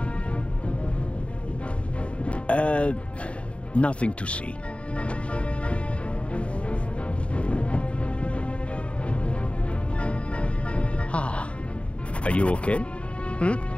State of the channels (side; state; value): right; late; 0.061 ms